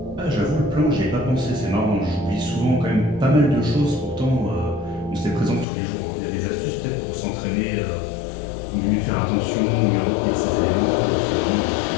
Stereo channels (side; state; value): right; drops out; at 5.7 s